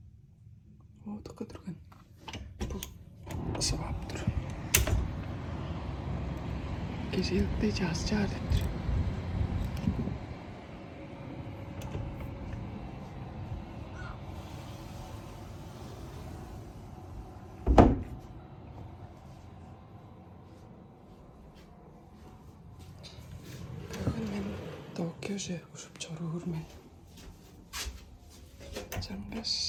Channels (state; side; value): identical; both; correlation 1.00